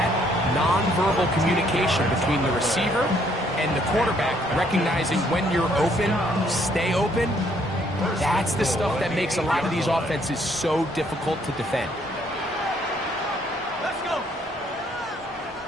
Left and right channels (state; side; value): normal; both; correlation 0.67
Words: nonverbal communication between the receiver and the quarterback, recognizing when you're open, stay open, that's the stuff that makes a lot of these offenses so difficult to defend. Let's go.